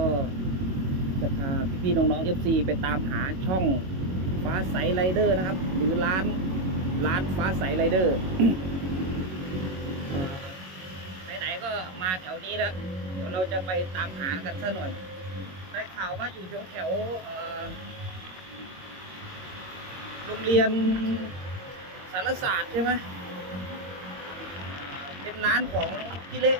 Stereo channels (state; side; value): late; left; 22 ms